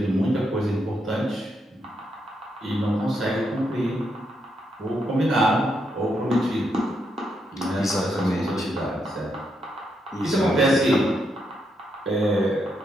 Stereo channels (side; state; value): both; normal; correlation 0.80